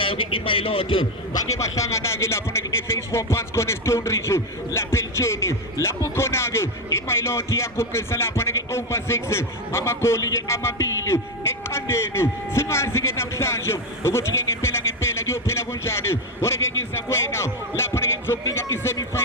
ke iMailot bake bahlangana ke lapho ke Phase 4 phansi khona eStone Ridge lapha eLtsheni lapho khona ke iMailot yaguqisa lapho ke over 6 amagoli ke amabili eqandeni singazi ke namhlanje ukuthi ke ngempela kuyophela kanjani ore ke ngiza kuwena lapho ke ngizokunika isemi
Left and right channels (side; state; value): both; normal; correlation 0.10